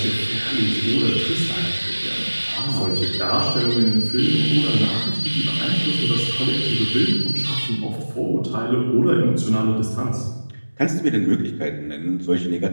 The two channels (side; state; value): both; inverted; correlation -1.00